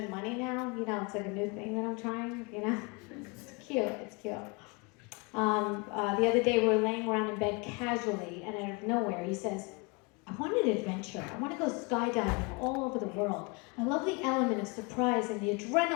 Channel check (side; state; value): right; quieter; 29.5 dB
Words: money now. You know, it's like a new thing that I'm trying, you know? It's cute, it's cute. The other day we were laying around in bed casually, and out of nowhere he says, I want an adventure. I want to go skydiving all over the world. I love the element of surprise and the